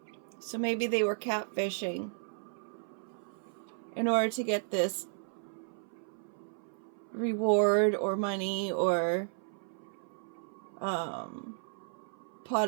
So maybe they were catfishing in order to get this reward or money or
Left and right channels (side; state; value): left; silent; 55 dB below the other